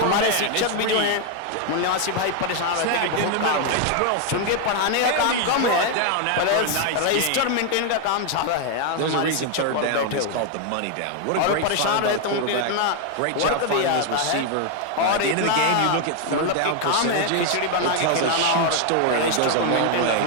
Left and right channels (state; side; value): different; both; correlation 0.01